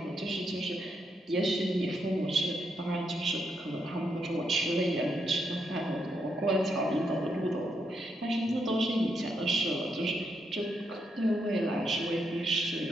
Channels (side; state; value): both; normal; correlation 0.80